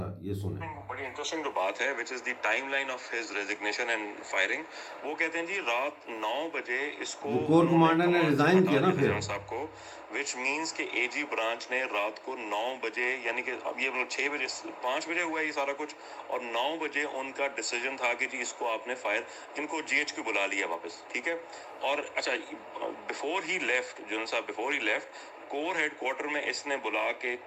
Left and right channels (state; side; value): identical; both; correlation 1.00